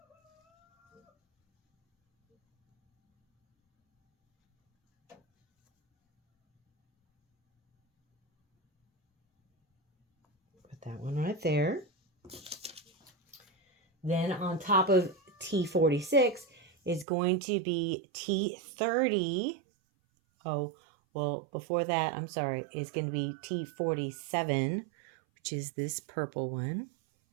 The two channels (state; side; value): drops out; left; at 17.1 s